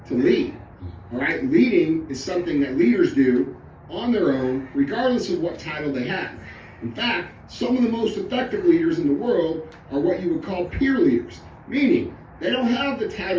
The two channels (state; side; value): identical; both; correlation 1.00